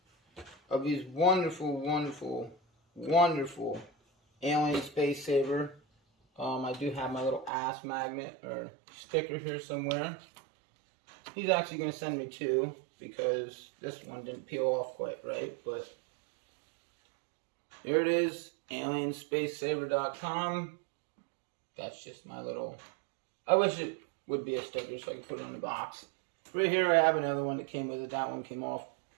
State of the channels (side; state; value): left; drops out; at 7.5 s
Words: of these wonderful, wonderful, wonderful alien space saver. I do have my little ass magnet or sticker here somewhere. He's actually going to send me two because this one didn't peel off quite right. But here it is, alienspacesaver.com. That's just my little... I wish it would be a sticker so I could put it on the box. Right here I have another one that came with it. That one came off